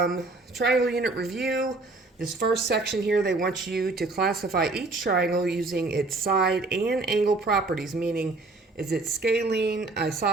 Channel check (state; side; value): quieter; left; 3.3 dB